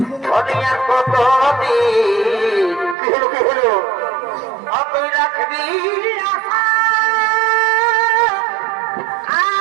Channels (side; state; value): left; drops out; at 3.0 s